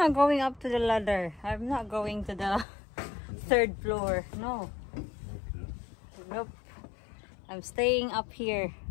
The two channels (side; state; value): right; drops out; at 2.7 s